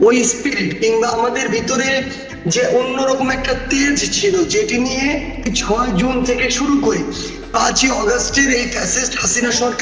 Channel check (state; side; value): identical; both; correlation 1.00